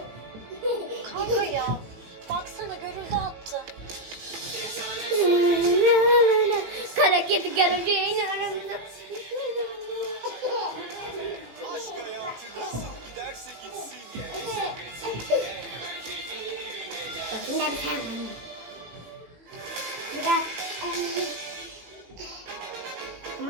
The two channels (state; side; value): late; left; 18 ms